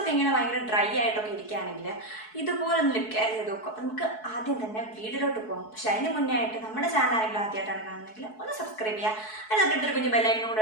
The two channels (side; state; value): right; late; 4.6 ms